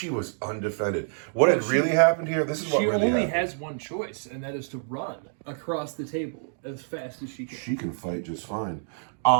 was undefended. What had really happened here? This is what really happened. She only has one choice, and that is to run across the table as fast as she can. She can fight just fine.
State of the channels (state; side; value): silent; left; digital silence